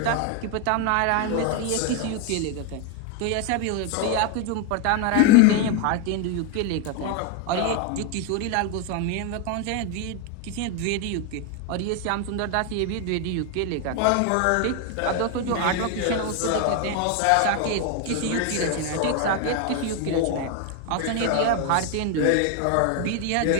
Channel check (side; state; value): both; different; correlation 0.01